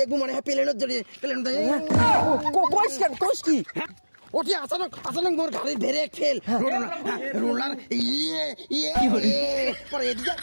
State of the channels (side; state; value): both; inverted; correlation -1.00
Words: মনে হয় প্লেনের জড়িয়ে প্লেন কোষ কি ওটি আচানক মোর গাড়ি ধরে ফেল রোলার পরে এদিকে